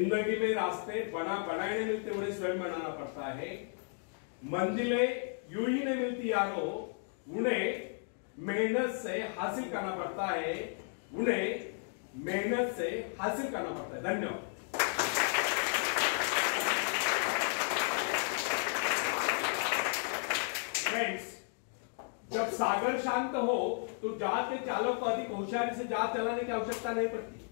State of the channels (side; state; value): right; silent; 55 dB below the other